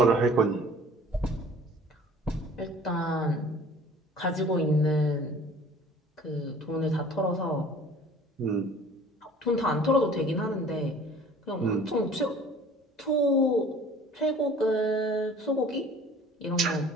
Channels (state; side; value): normal; both; correlation 0.49